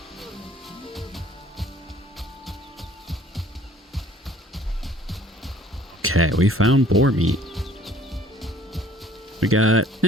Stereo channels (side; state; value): both; normal; correlation 0.55